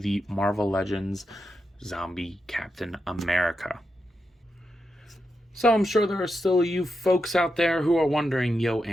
Marvel Legends Zombie Captain America. So I'm sure there are still you folks out there who are wondering, yo,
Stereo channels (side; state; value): both; normal; correlation 0.87